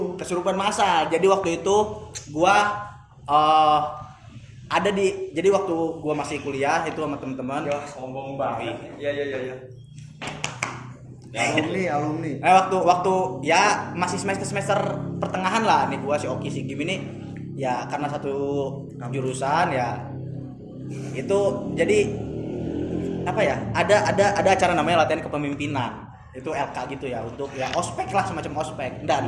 Kesurupan massal. Jadi waktu itu gua jadi waktu gua masih kuliah itu sama teman-teman. Ya, sombong banget. Iya. Alumni. Nah, waktu ya masih semester pertengahan lah nih gua si Oki si Gim ini ya karena satu jurusan ya itu jadi apa ya ada acara namanya latihan kepemimpinan itu LK gitu ya untuk ya ospek lah semacam ospek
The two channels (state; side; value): identical; both; correlation 1.00